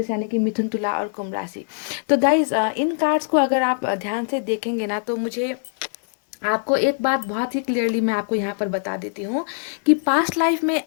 यानी कि मिथुन, तुला और कुंभ राशि। तो गाइज इन कार्ड्स को अगर आप ध्यान से देखेंगे ना, तो मुझे आपको एक बात बहुत ही क्लियरली मैं आपको यहाँ पर बता देती हूँ कि पास्ट लाइफ में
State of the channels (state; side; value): silent; right; digital silence